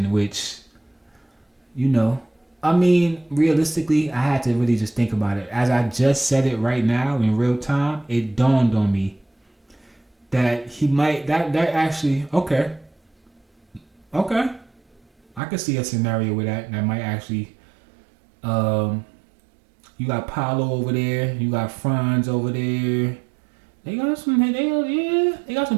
which, realistically, I had to really just think about it. As I just said it right now in real time, it dawned on me that he might, that actually, okay. I could see a scenario where that might actually, you got Paolo over there, you got Franz over there, They got some. They got some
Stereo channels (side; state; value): left; drops out; at 15.4 s